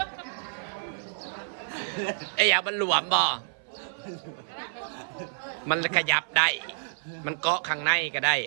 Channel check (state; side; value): silent; left; 56 dB below the other